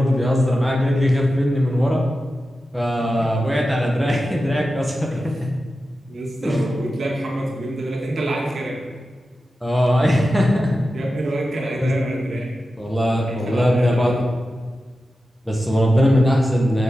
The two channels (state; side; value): normal; both; correlation 0.92